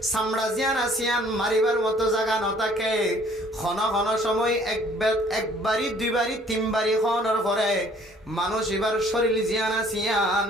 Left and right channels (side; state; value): both; normal; correlation 0.57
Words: চামড়া জিয়ান আসিয়ান মারিবার মতো জায়গা নথাকে ঘন সময় একবারই দুইবারই তিনবারই খনের পরে মানুষ এবার শরীর জিয়ান আসিয়ান